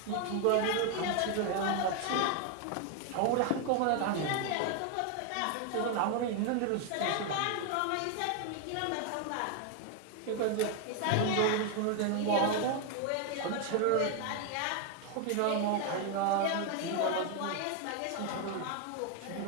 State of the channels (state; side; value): different; both; correlation 0.01